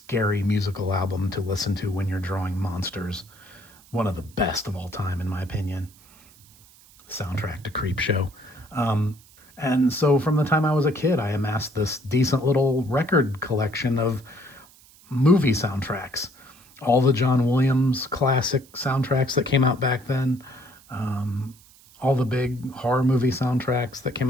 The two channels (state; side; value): noise; right; hiss, 26 dB below the sound